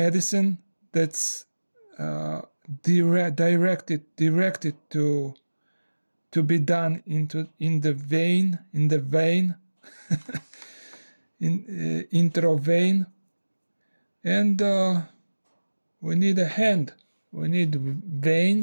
that's directed to be done in the vein intravein, and we need a hand. We need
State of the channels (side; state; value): both; inverted; correlation -1.00